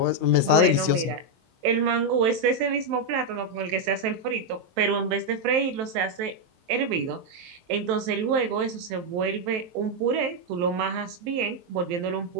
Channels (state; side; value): late; left; 23 ms